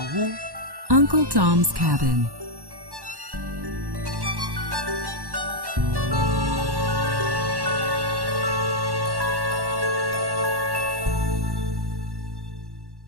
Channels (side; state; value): left; late; 1.1 ms